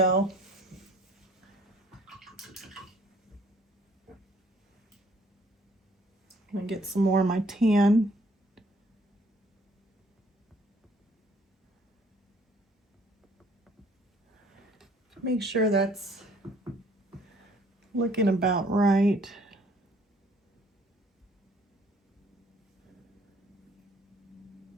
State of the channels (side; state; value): both; normal; correlation 0.60